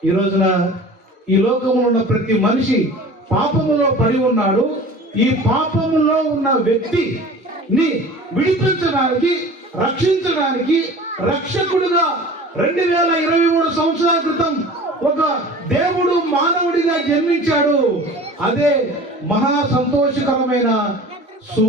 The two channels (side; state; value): both; normal; correlation 0.41